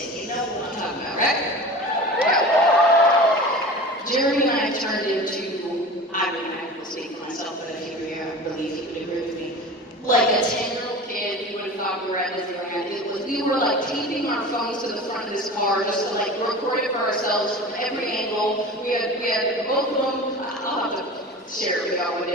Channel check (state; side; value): normal; both; correlation 0.35